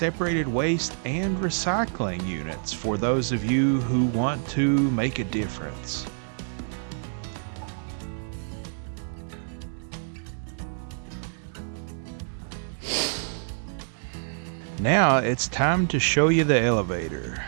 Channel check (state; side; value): silent; left; digital silence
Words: waste and recycling units for those of you who want to make a difference. Now it's time to show you the elevator.